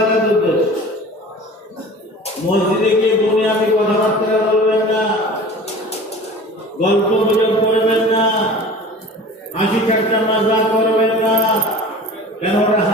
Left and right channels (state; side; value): normal; both; correlation 0.40